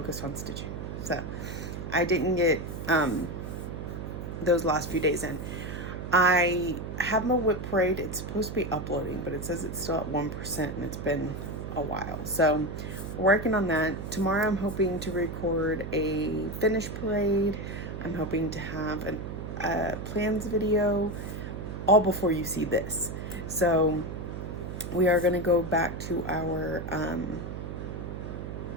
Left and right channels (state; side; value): noise; right; hum, 7 dB below the sound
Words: on stitching, so I didn't get those last few days in. I have my whip parade. It's supposed to be uploading, but it says it's still at 1% and it's been a while. So we're working on that. Tomorrow I'm hoping to record a finish parade. I'm hoping to have a plans video all before you see this. So we are going to go back to our, I